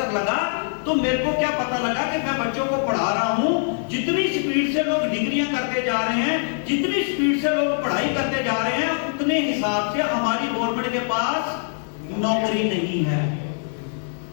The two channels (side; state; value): right; silent; digital silence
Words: लगा तो मेरे को क्या पता लगा कि मैं बच्चों को पढ़ा रहा हूं, जितनी स्पीड से लोग डिग्रियां करते जा रहे हैं, जितनी स्पीड से लोग पढ़ाई करते जा रहे हैं, उतने हिसाब से हमारी गवर्नमेंट के पास नौकरी नहीं है।